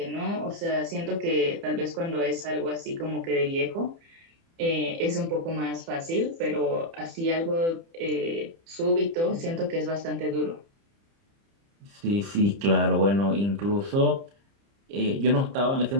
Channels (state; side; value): late; left; 30 ms